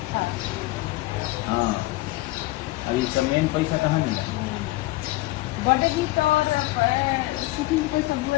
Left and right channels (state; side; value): quieter; right; 19.5 dB